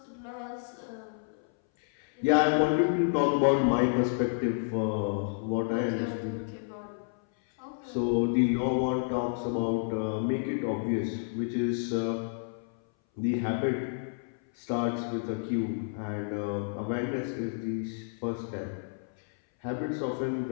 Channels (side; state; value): right; silent; 58 dB below the other